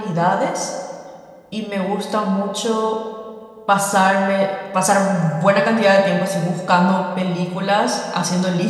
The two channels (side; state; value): both; identical; correlation 1.00